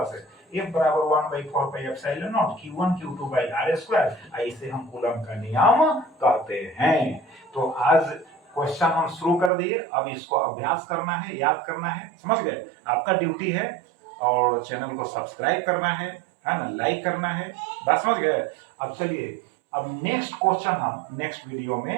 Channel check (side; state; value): left; drops out; at 9.5 s